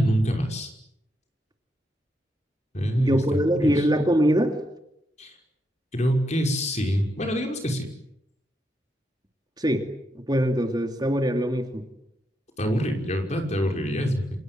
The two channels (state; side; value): normal; both; correlation 0.81